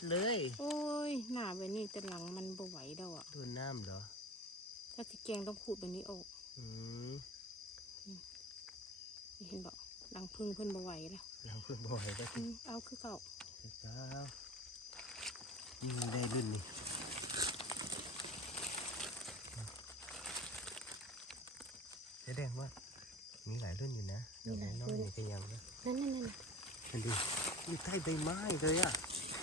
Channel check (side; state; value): both; normal; correlation 0.37